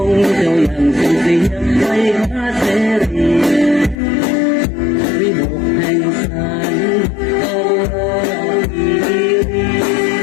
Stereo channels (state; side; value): drops out; right; at 4.0 s